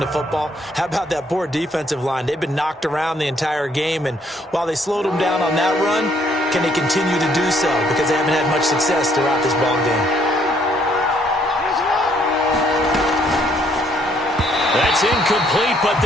the football. How about that poor defensive line? They've been knocked around the entire game, and while they slowed them down on that run, can they continue to do so? Because they haven't had much success throughout this ball game. That's incomplete, but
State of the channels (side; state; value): both; normal; correlation 0.67